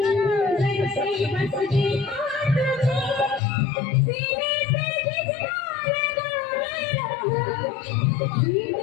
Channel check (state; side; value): drops out; right; at 3.4 s